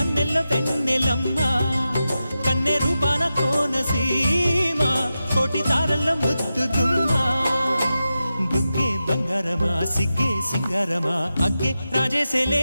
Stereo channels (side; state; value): both; inverted; correlation -0.91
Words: వెన్నెలమ్మా కన్నె రూపాన కోనసీమా కోటి తారల్లో ముద్దుగుమ్మా బుగ్గే బంగారమా సిగ్గే సింగారమా అగ్గే